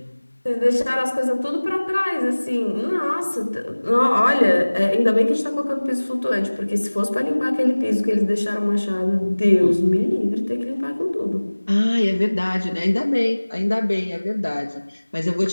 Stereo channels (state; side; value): inverted; both; correlation -1.00